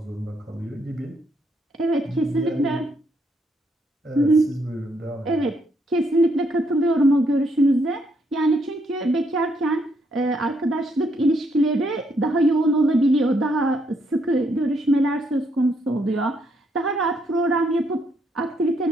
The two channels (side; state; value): both; normal; correlation 0.74